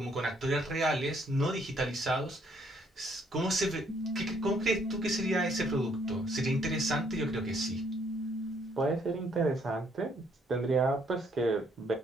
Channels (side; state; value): both; normal; correlation 0.68